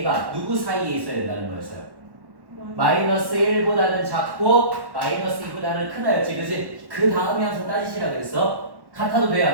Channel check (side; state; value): left; late; 1.1 ms